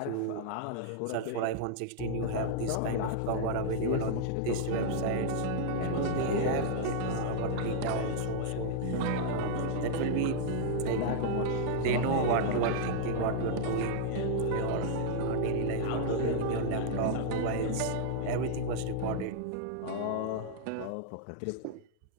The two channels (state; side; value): different; both; correlation -0.01